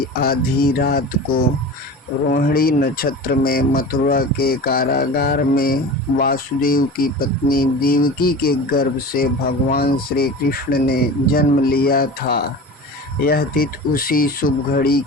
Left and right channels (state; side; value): normal; both; correlation 0.34